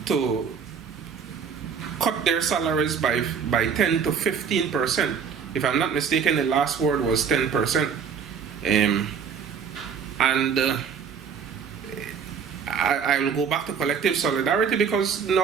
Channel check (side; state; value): left; quieter; 6.7 dB